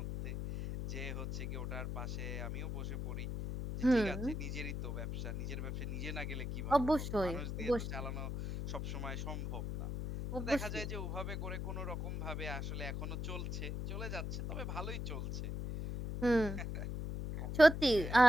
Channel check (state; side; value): noise; left; hum, 3 dB below the sound